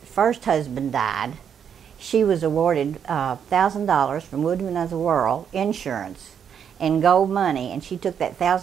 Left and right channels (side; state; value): left; quieter; 8.0 dB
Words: first husband, died, she was awarded $1,000 from Woodman of the World insurance and gold money, and she took that